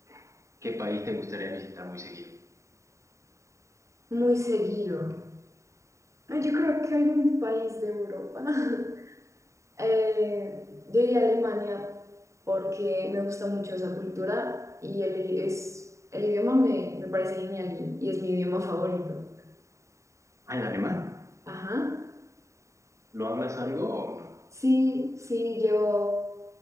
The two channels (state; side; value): late; left; 0.14 ms